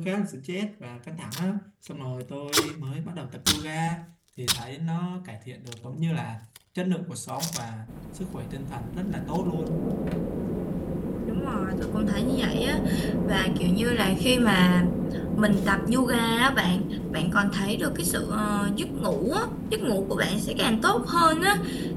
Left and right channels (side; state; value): both; identical; correlation 1.00